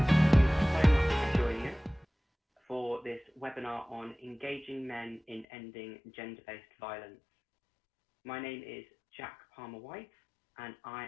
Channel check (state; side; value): drops out; right; at 5.5 s